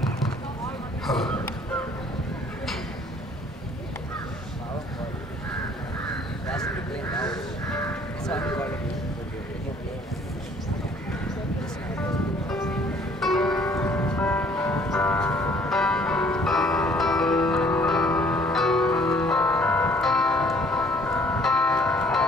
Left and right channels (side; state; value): both; normal; correlation 0.58